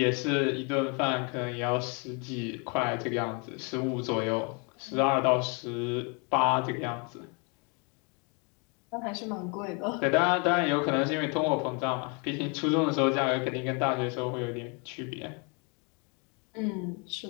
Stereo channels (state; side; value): quieter; right; 33.7 dB